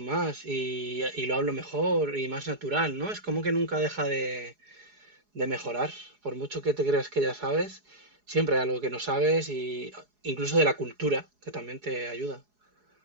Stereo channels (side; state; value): left; late; 4.8 ms